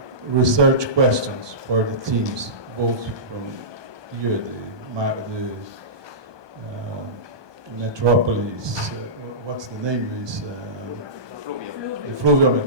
research questions for the teams, both from here, the metropolis, what's the name is? The Fluvial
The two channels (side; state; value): left; late; 1.2 ms